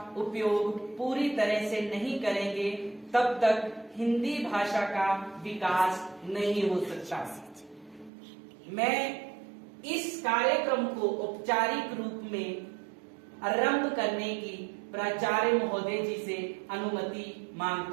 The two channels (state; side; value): drops out; left; at 8.1 s